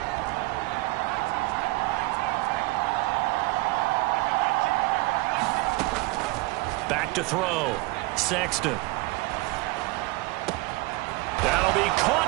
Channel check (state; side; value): quieter; left; 22.0 dB